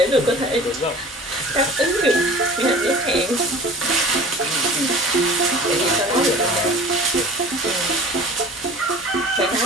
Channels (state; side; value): normal; both; correlation 0.42